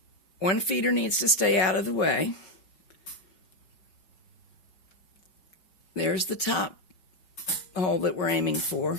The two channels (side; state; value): right; late; 5.4 ms